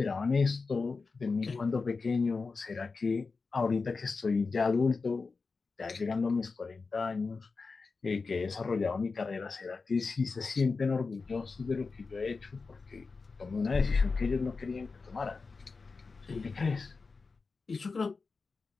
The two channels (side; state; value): right; quieter; 4.4 dB